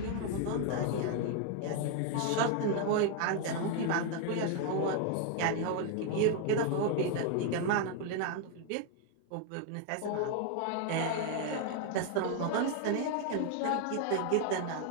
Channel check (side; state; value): both; different; correlation 0.00